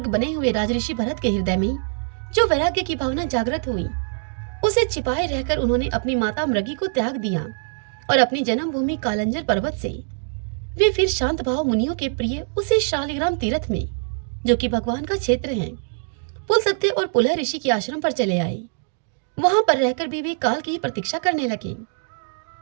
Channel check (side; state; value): left; silent; digital silence